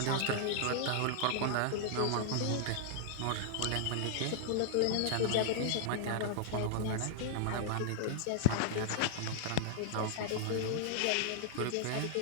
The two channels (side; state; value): both; different; correlation -0.01